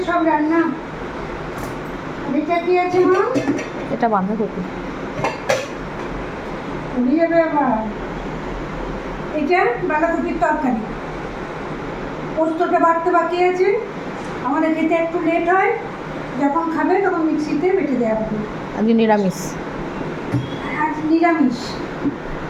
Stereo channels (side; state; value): both; identical; correlation 1.00